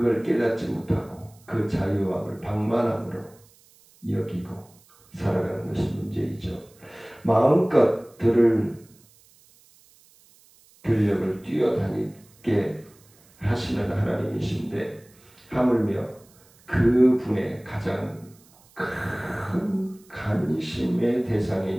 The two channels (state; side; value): noise; right; hiss, 29 dB below the sound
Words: 깨닫지 못하고 그 자유함을 방만함으로 여기고 살아가는 것이 문제이죠. 마음껏 들력을 뛰어다니게 하시는 하나님이신데 하물며 그분의 가장 큰 관심의